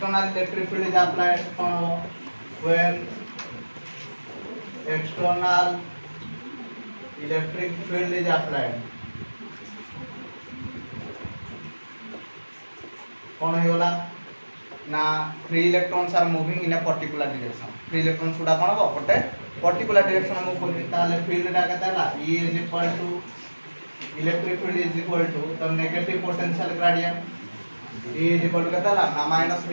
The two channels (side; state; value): both; inverted; correlation -1.00